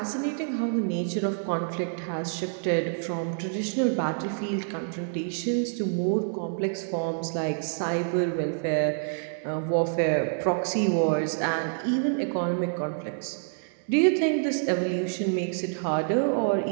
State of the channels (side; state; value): left; silent; 60 dB below the other